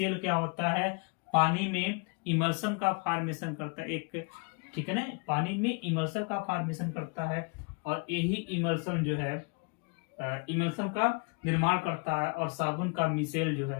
क्या होता है, पानी में इमल्सन का फॉर्मेशन करता है, एक, ठीक है ना, पानी में इमल्सन का फॉर्मेशन करता है, और यही इमल्सन जो है इमल्सन का निर्माण करता है, और साबुन का मिसेल जो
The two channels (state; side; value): quieter; right; 34.2 dB